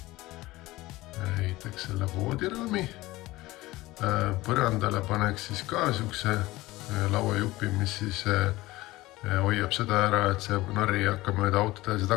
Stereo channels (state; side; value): quieter; right; 18.8 dB